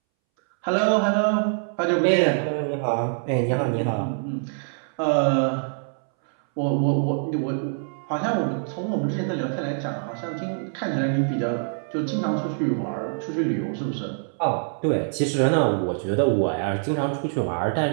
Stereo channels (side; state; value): left; silent; 62 dB below the other